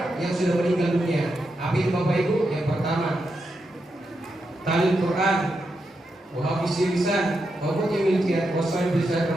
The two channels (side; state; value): both; normal; correlation 0.85